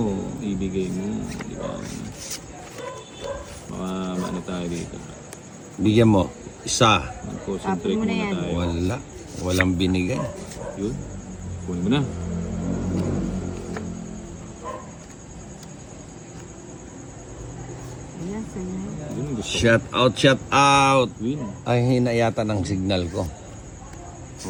Ibigay mo. Di ba? Baka ano tayo dito. Bigyan mo. Isa. Mag-concentrate Tapon mo na muna yan. tayo. Wala. Walang binigay. Yun. Kunin mo na. Ayan, sa'yo. Yun ang gusto ko. Shout out, shout out. Queen. Ay, hina yata ng signal ko.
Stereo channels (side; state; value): both; identical; correlation 1.00